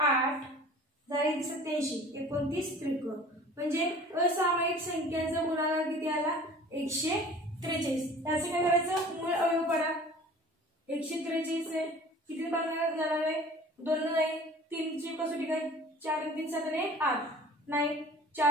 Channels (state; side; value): normal; both; correlation 0.45